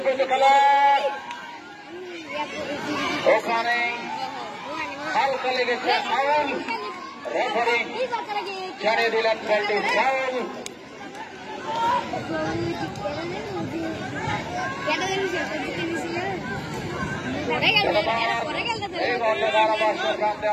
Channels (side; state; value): both; identical; correlation 1.00